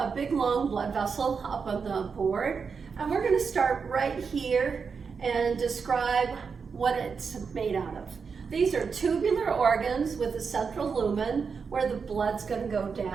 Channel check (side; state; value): left; quieter; 5.6 dB